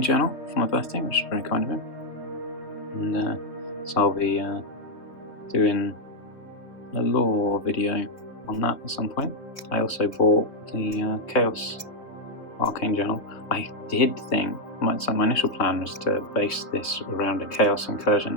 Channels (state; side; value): late; right; 3.3 ms